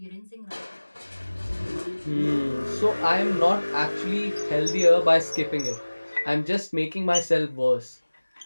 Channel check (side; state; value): both; inverted; correlation -1.00